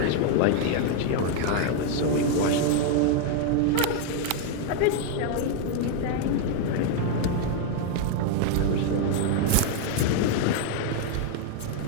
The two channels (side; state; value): both; different; correlation 0.00